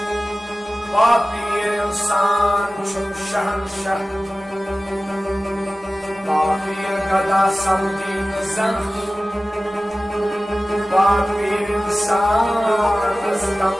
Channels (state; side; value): normal; both; correlation 0.96